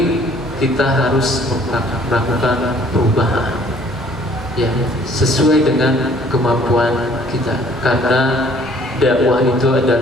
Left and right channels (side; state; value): both; normal; correlation 0.57